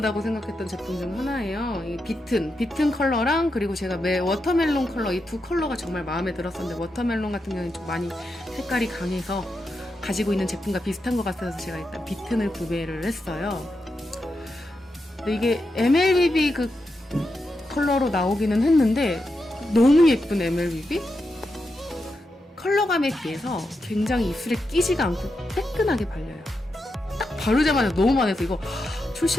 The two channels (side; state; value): both; normal; correlation 0.86